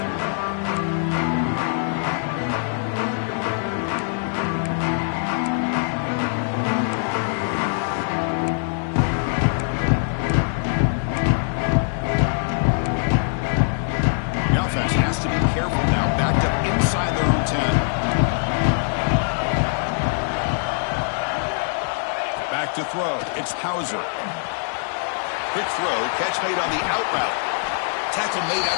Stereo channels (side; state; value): right; silent; 63 dB below the other